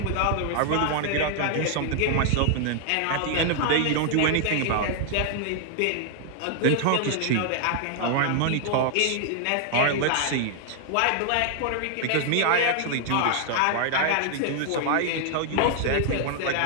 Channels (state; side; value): different; both; correlation 0.00